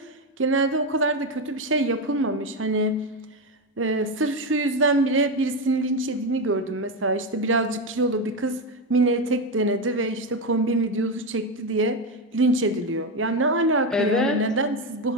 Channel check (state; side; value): normal; both; correlation 0.12